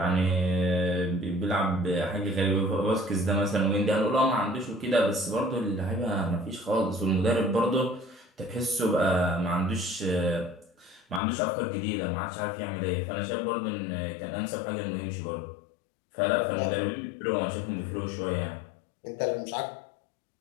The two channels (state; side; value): drops out; right; at 11.2 s